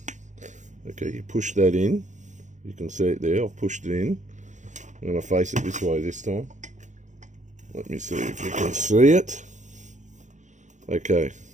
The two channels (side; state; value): left; late; 0.35 ms